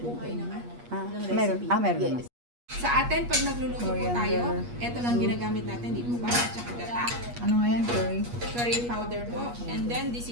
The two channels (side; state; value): left; late; 8.4 ms